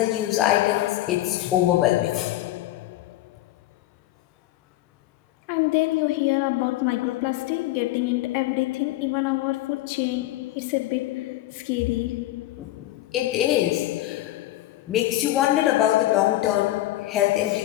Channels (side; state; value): right; quieter; 15.7 dB